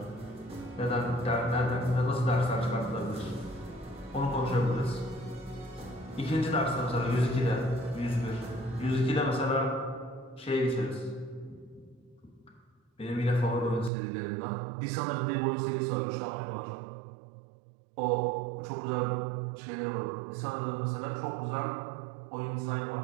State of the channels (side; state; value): left; drops out; at 13.9 s